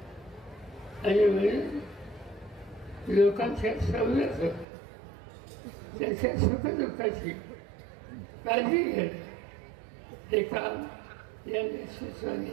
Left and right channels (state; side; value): drops out; left; at 4.7 s